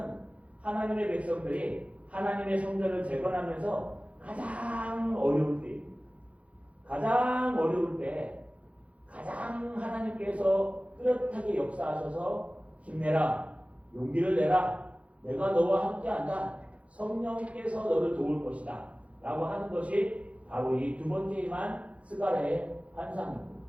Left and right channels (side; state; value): left; late; 0.064 ms